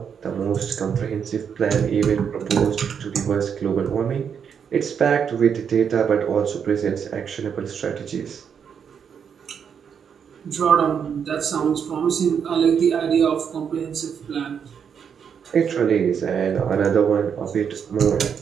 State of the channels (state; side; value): quieter; left; 7.3 dB